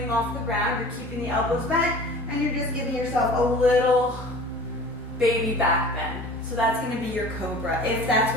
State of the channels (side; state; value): both; normal; correlation 0.43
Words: off the ground, you're keeping the elbows bent, and you're just giving yourself a little baby back bend. So that's going to be your cobra, if that's